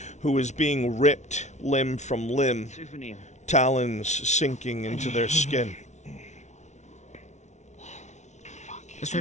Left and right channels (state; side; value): late; right; 0.33 ms